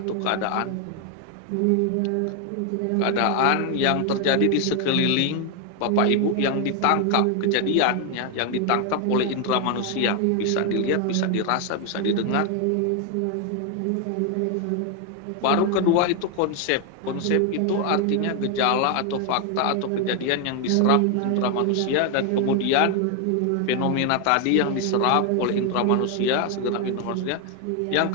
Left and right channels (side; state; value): both; different; correlation 0.01